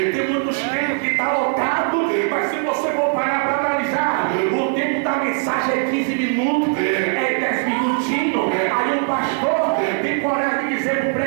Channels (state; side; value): silent; left; 57 dB below the other